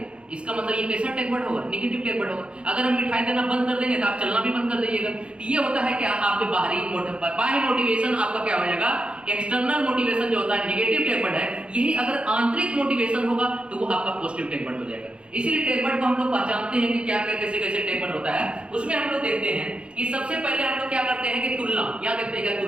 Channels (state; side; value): late; left; 0.057 ms